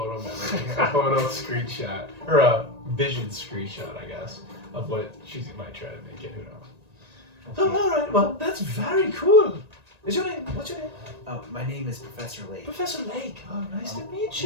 of memory, a photo screenshot, or a vision screenshot, I guess, of what she might try to make it. Who knows? Oh, all right. Well, that's very cool. Is your name? What's your name? My name is Professor Lake. Professor Lake. Oh, nice to meet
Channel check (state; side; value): late; left; 1.8 ms